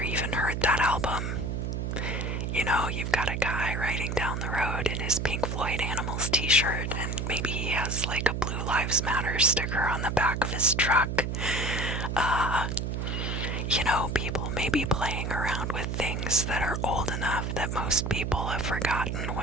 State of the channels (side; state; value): right; noise; hum, 2 dB below the sound